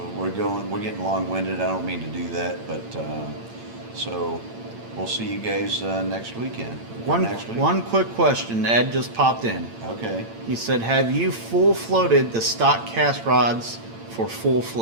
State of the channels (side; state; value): left; late; 8.8 ms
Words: We're getting long-winded. I don't mean to do that, but so we'll see you guys next weekend. Next week. one quick question. Ed just popped in. Okay. He said, "Have you full floated the stock cast rods for full